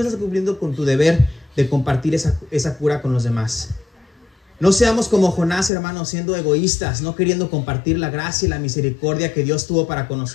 estás cumpliendo con tu deber de compartir esa cura con los demás. No seamos como Jonás, hermanos, siendo egoístas, no queriendo compartir la gracia y la misericordia que Dios tuvo para con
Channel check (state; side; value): drops out; right; at 5.7 s